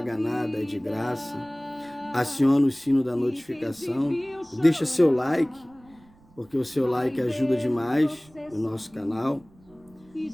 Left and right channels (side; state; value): right; noise; rumble, 28 dB below the sound